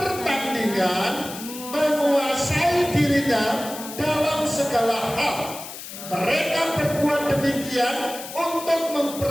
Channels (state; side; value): noise; left; hiss, 11 dB below the sound